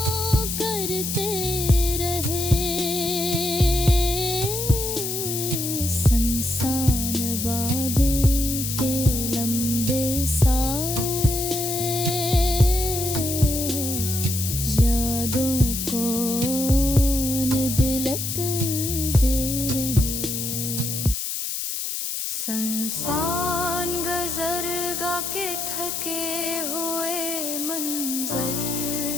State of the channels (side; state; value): left; noise; hiss, 3 dB below the sound